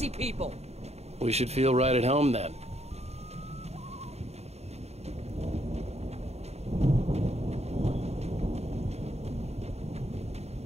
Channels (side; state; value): left; late; 0.31 ms